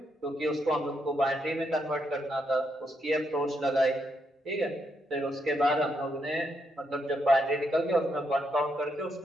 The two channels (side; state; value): both; normal; correlation 0.79